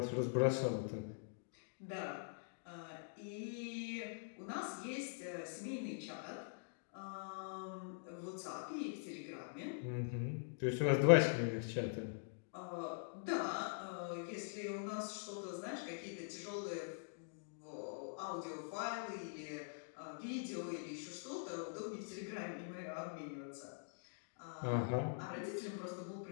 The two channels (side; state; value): right; silent; digital silence